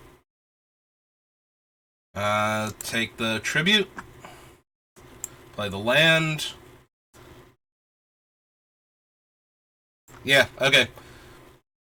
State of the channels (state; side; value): identical; both; correlation 1.00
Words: Take the tribute. Play the land. Yeah, okay.